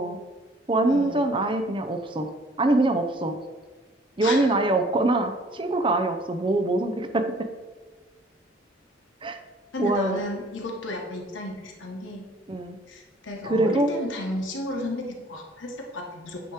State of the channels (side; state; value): both; normal; correlation 0.55